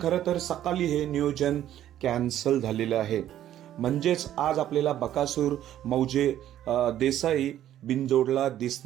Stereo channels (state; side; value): quieter; left; 11.9 dB